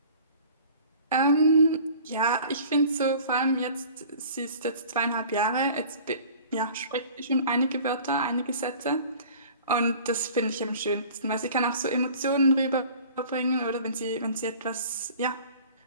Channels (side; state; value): both; inverted; correlation -0.46